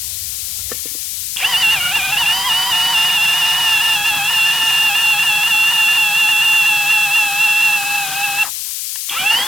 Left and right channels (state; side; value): noise; left; hiss, 4 dB below the sound